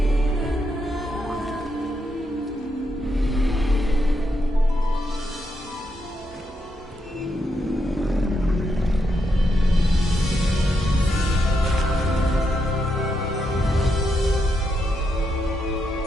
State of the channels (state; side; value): normal; both; correlation 0.81